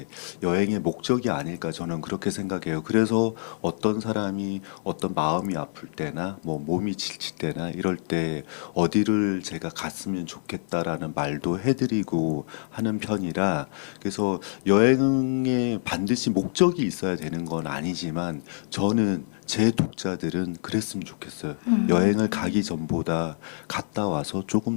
여행의 목적이 아닐까 저는 그렇게 생각해요. 그래서 어떤 사람이 어떤 마음이 아플 때나 뭐 몸이 지칠 때나 이럴 때 어디를 제가 갔으면 좋겠다라는 말도 해드리고 하는 편이라 그래서 여행에 반드시 목적이 있어야 되는 건 아니지만 저는 제 독자들은 그랬으면 좋겠어요. 여행을 가기 전보다 갔다 와서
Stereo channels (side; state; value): right; silent; 57 dB below the other